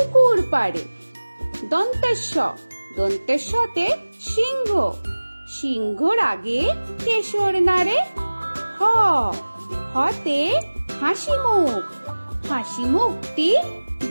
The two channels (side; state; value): both; inverted; correlation -1.00